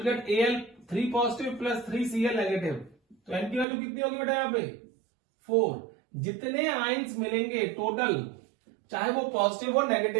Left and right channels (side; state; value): left; drops out; at 3.7 s